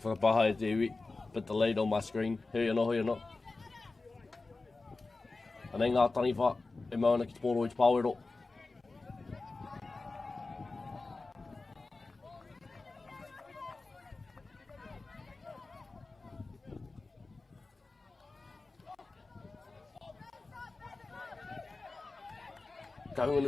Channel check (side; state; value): right; quieter; 3.6 dB